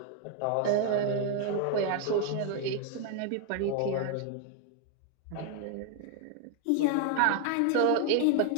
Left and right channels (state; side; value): different; both; correlation 0.00